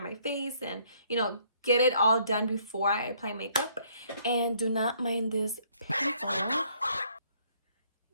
my face and, you know, get it all done before I apply makeup. And do not mind this pimple.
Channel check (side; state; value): both; inverted; correlation -0.65